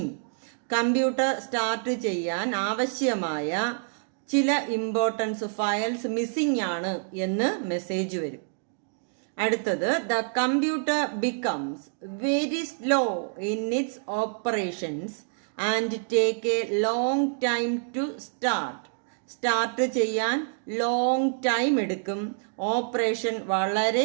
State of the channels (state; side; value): silent; left; digital silence